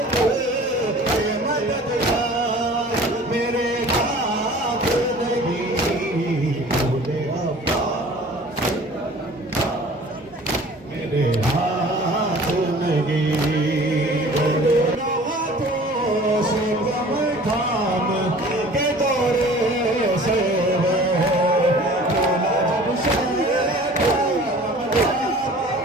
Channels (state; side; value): normal; both; correlation 0.46